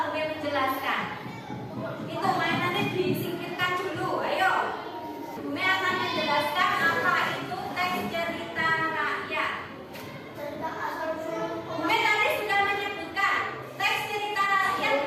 Bumi menjelaskan, itu mainannya disingkirkan dulu. Ayo, Bumi akan menjelaskan apa itu teks cerita rakyat. Bumi tadi sudah menyebutkan teks cerita rakyat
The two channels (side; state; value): both; identical; correlation 1.00